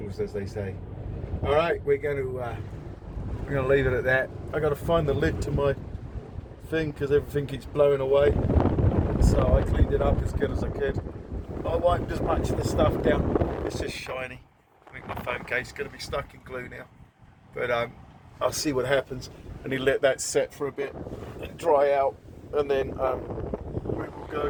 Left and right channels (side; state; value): both; identical; correlation 1.00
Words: as they say. All right, we're going to leave it at that. I got to find the lid to my thing because everything keeps blowing away. So I cleaned it up as good as I could. I wiped as much of the stuff down. It's just shiny. I think my phone case is going to be stuck in glue now. But I'll see what happens. I need to let that set for a bit and dry out, and then we will